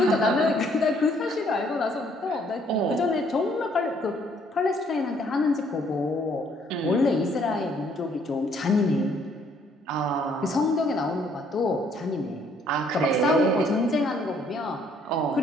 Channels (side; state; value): both; normal; correlation 0.65